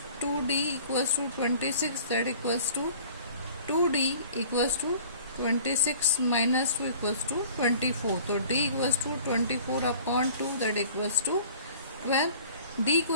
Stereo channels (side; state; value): both; inverted; correlation -0.47